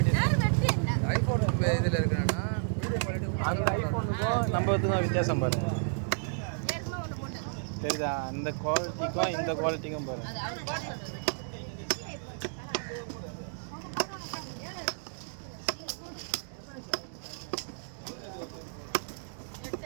யார் வெற்றி என்ன ஐஃபோன் இதில் இருக்கிறேன்னா வீடியோ குவாலிட்டி அந்த ஐஃபோனுக்கும் நம்ம இதுக்கும் வித்தியாசம் பாருங்க ஏற்கனவே ஒன்று போட்டேன் தெரியுதா அந்த குவாலிட்டிக்கும் இந்த குவாலிட்டிக்கும் பாருங்க அது அவர் போட சொல்றது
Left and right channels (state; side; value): silent; left; digital silence